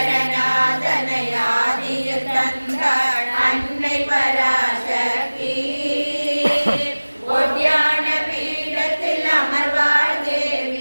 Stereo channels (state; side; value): inverted; both; correlation -1.00